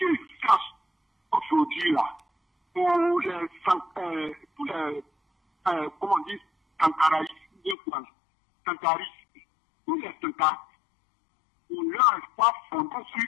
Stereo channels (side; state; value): right; drops out; at 7.8 s